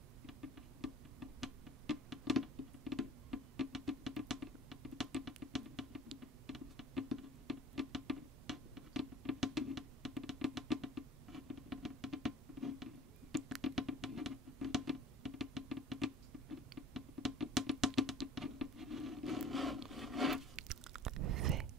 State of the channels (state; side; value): normal; both; correlation 0.46